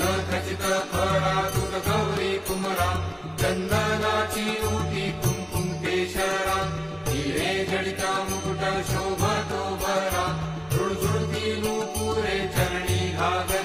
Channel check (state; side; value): identical; both; correlation 1.00